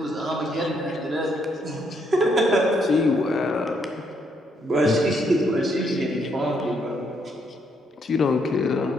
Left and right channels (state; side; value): normal; both; correlation 0.73